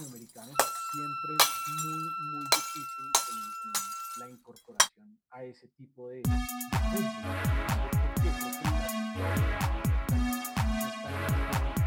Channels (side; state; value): both; identical; correlation 1.00